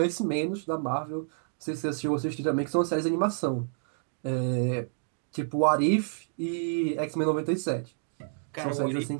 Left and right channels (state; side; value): silent; left; digital silence